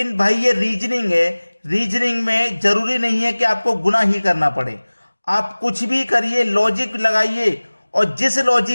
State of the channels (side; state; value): both; inverted; correlation -1.00